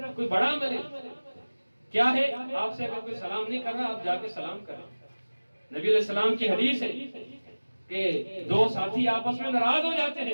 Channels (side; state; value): both; inverted; correlation -1.00